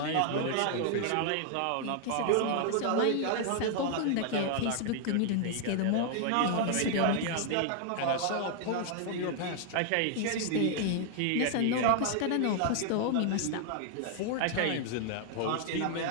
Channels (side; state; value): both; different; correlation 0.00